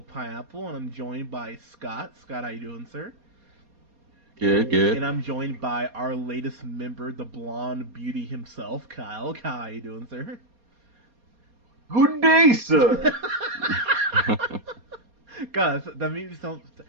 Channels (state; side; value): late; left; 4.2 ms